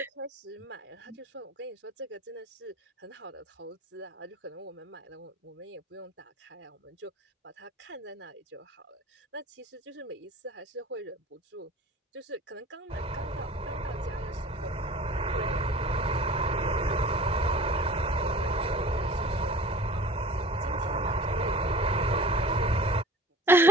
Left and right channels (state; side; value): normal; both; correlation 0.43